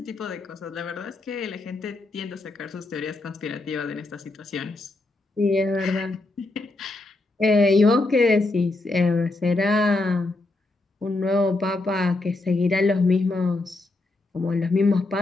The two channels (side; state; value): right; quieter; 3.0 dB